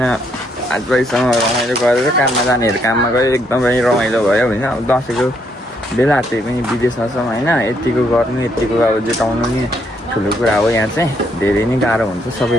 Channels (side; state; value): both; normal; correlation 0.73